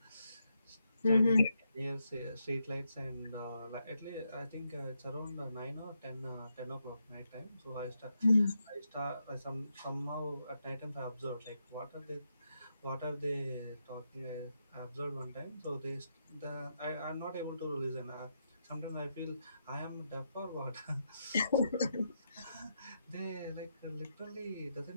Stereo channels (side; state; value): both; inverted; correlation -0.82